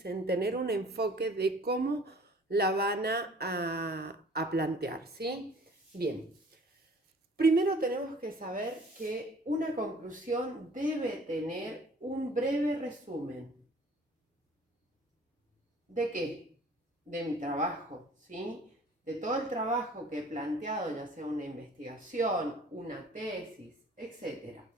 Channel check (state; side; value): normal; both; correlation 0.51